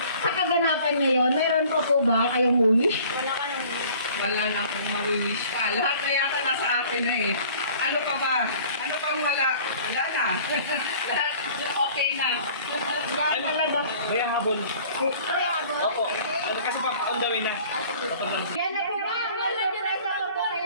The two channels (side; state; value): both; inverted; correlation -0.50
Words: sa kaganapan ngayon, meron po ba kayong wish? Wala ka nang Wala na akong mawi-wish pa. Lahat na yata nasa akin na eh. Ano pa ba? Ano pang wala? Wala na. Lahat okay na. Yan talaga. May habol. Ay, habol. Opo. Kasi on the way na. Yan na po ba? Wala Teresa po po